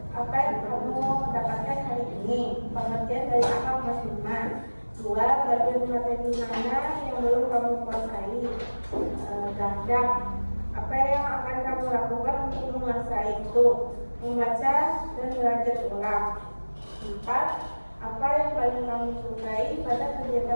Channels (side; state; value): both; inverted; correlation -1.00